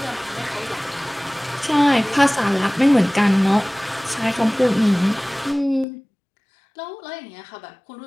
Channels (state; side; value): drops out; right; at 5.9 s